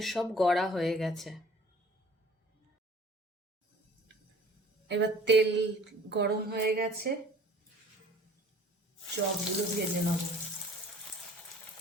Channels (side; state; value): both; normal; correlation 0.50